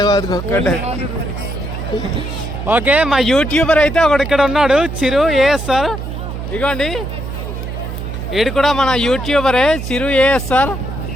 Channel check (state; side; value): noise; right; hum, 7 dB below the sound